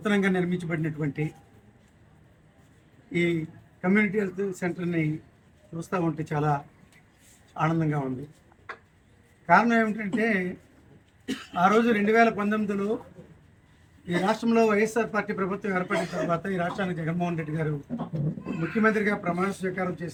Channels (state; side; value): identical; both; correlation 1.00